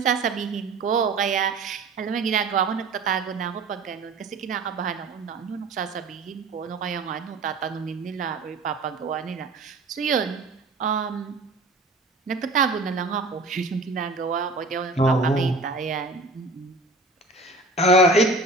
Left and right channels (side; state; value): left; quieter; 3.2 dB